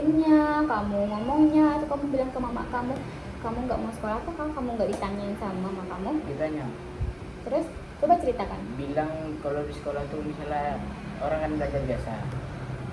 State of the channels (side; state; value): both; identical; correlation 1.00